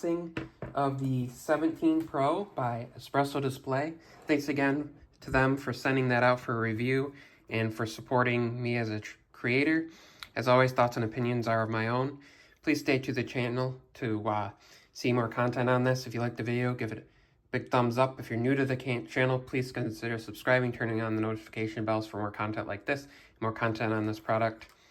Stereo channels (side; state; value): both; identical; correlation 1.00